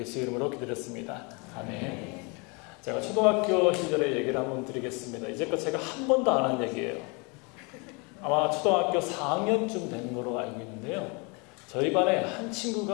이름으로 기도드렸습니다. 아멘. 제가 초등학교 시절의 얘기를 한번 드리겠습니다. 이제껏 제가 한 번도 안 한 얘기예요. 아마 초등학교 4학년쯤 된 걸로 알고 있는데요. 저희 반에 한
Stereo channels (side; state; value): right; quieter; 30.9 dB